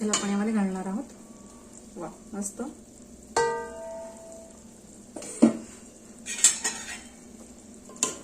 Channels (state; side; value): identical; both; correlation 1.00